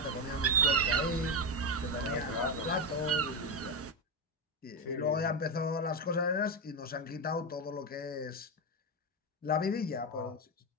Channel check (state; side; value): normal; both; correlation 0.10